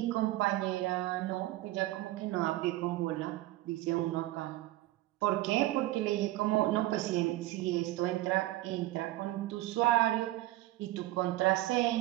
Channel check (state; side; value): quieter; left; 16.8 dB